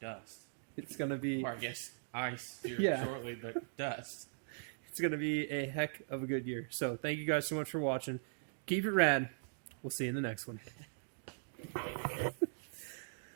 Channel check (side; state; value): left; silent; digital silence